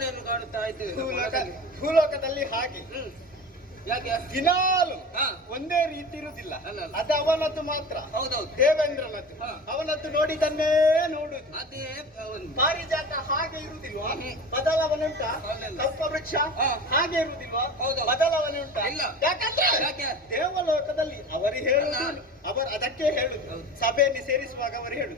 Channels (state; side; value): normal; both; correlation 0.34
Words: ಕಾಣುತ್ತಾ ಇದ್ದೇವೆ ಭೂಲೋಕದಲ್ಲಿ. ಹಾಗೆ ಯಾಕೆ ದಿನಾಲು ಒಂದೇ ರೀತಿ ಇರುವುದಿಲ್ಲ. ಅದು ಅವನದ್ದು ಮಾತ್ರ. ಹೌದೌದು, ದೇವೇಂದ್ರನದ್ದು. ಅವನದ್ದು ನೋಡಿದನ್ನೇ ನೋಡುದು. ಅದೇ ಪಾರಿಜಾತ ಹಾಗೆ ಇರುವುದಿಲ್ವಾ? ಬದಲಾವಣೆ ಉಂಟಾ? ಕಲ್ಪವೃಕ್ಷ ಹಾಗೆ ಇರುವುದಿಲ್ವಾ? ಬದಲಾವಣೆ ಉಂಟಾ? ಯಾಕಂದ್ರೆ ದೇವಲೋಕದಲ್ಲಿ ಅವರು ಹೇಳುದು, ಅದಕ್ಕೆ ಹೇಳುದು. ಸಭೆಯಲ್ಲಿ ಸೇರಿಸುವಾಗ ಅವರು